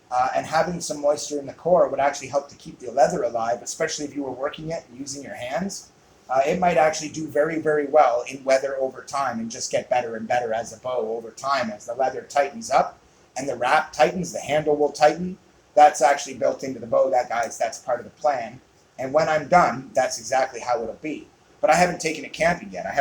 And having some moisture in the core would actually help to keep the leather alive, especially if you were working it using your hands. It might actually do very, very well in weather over time and just get better and better as a bow over time. As the leather tightens up and the wrap tightens, the handle will tighten. That's actually built into the bow. That's part of the plan. And when I'm done, that's exactly how it'll be. But I haven't taken it camping yet. I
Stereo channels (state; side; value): identical; both; correlation 1.00